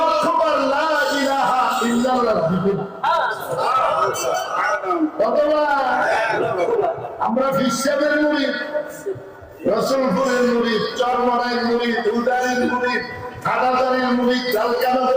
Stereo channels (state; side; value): identical; both; correlation 1.00